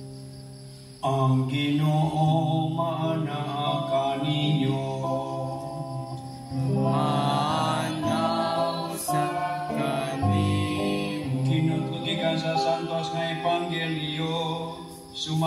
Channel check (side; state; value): both; identical; correlation 1.00